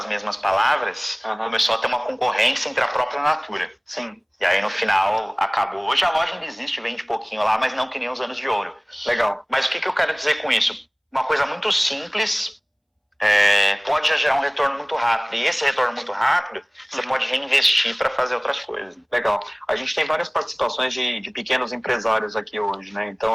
mesmas palavras, começou a ter uma concorrência entre a própria Natura. Sim. E aí no final acabou. Hoje a loja ainda existe, vende pouquinho lá, mas não que nem os anos de ouro. Legal. Mas o que eu quero dizer com isso? Uma coisa muito simples pode já gerar um retorno muito rápido. E esse retorno muito rápido, você pode reinvestir para fazer outras coisas. Legal. A gente tem várias participações de pequenos empresários aqui hoje, né?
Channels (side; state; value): both; identical; correlation 1.00